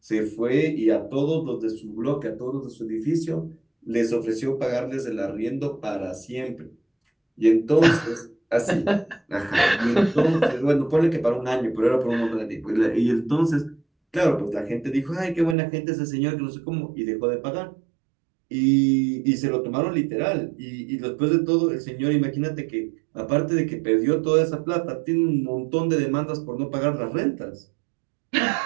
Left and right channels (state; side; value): drops out; left; at 15.6 s